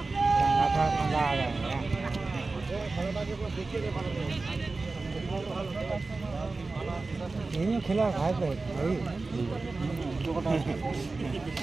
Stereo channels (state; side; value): quieter; left; 3.7 dB